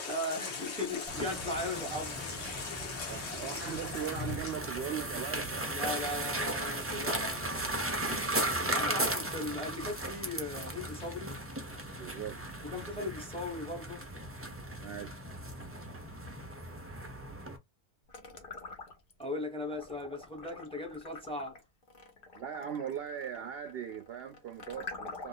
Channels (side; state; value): both; normal; correlation 0.08